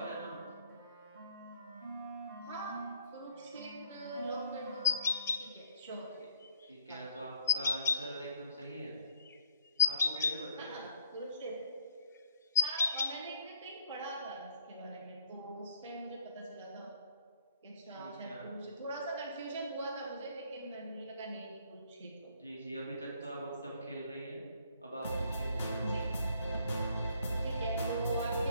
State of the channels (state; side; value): inverted; both; correlation -0.64